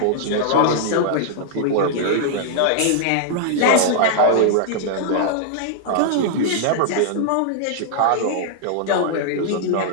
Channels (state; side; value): different; both; correlation -0.01